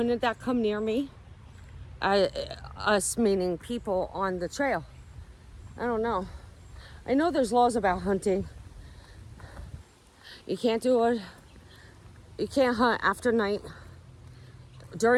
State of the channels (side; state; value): both; identical; correlation 1.00